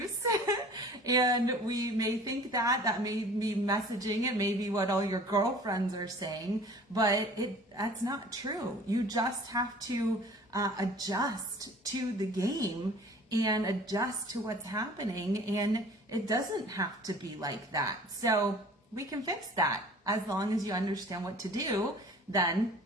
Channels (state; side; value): normal; both; correlation 0.46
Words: And we may think that may be messaging. It may be what all your girlfriends are saying, but that's not true. You just have to adjust to the game and adjust to what's happening. And it doesn't have to be like that. So we can fix that. As long as you understand what to do, then